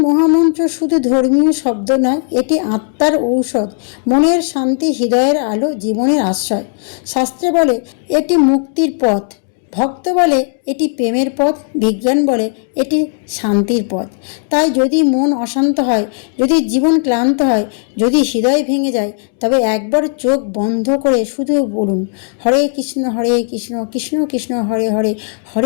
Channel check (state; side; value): silent; right; 61 dB below the other